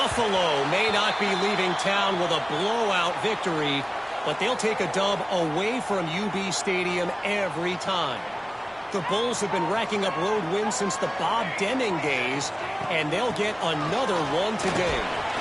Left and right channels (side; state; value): both; identical; correlation 1.00